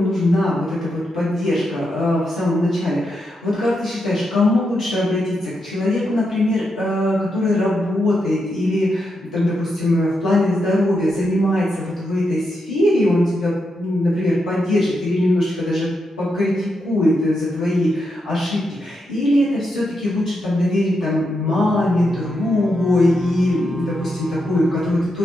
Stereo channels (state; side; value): normal; both; correlation 0.84